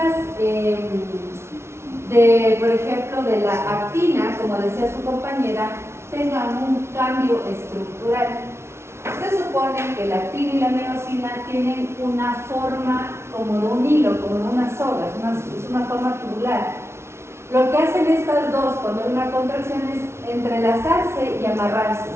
por ejemplo, de la actina, como decía su compañera, tengan un cambio estructural. Se supone que la actina y la miosina tienen una forma como de un hilo, como de una soga, es una forma tubular. Lo que hacen estas dos cuando hay una contracción es entrelazarse y amarrarse.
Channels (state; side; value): late; left; 0.13 ms